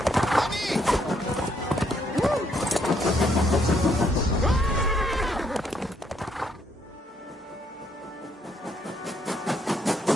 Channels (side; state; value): both; normal; correlation 0.72